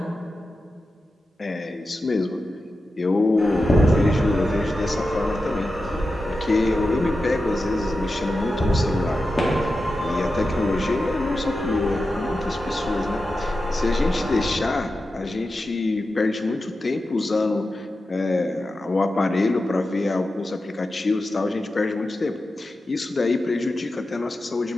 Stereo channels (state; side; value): normal; both; correlation 0.91